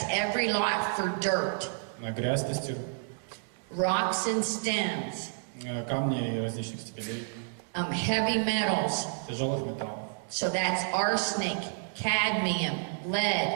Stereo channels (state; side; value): silent; left; 58 dB below the other